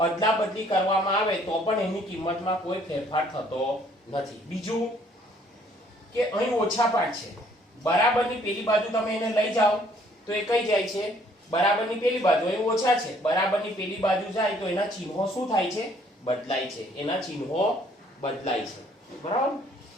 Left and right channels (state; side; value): normal; both; correlation 0.62